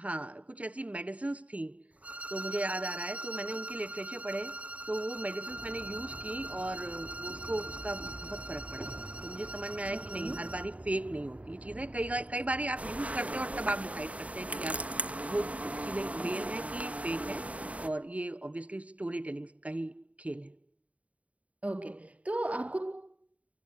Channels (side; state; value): left; late; 0.067 ms